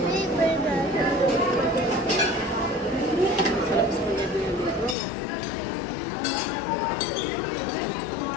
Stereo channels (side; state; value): right; drops out; at 5.0 s